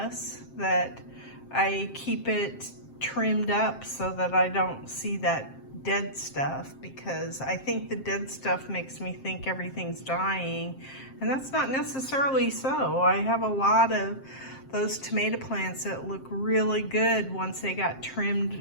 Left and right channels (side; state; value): right; late; 7.6 ms